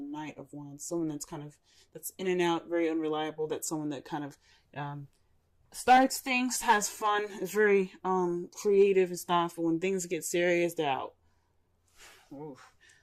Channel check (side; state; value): both; identical; correlation 1.00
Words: Knight of Wands. Someone that's in and out, very unreliable. That's someone that kind of starts things, has fun, is very creative and stuff. But when things get serious, they're out. Oof.